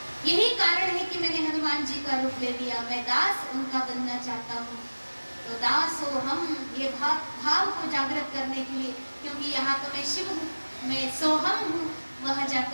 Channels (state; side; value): inverted; both; correlation -1.00